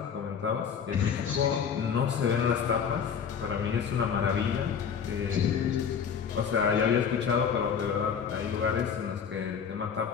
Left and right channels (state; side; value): quieter; right; 7.1 dB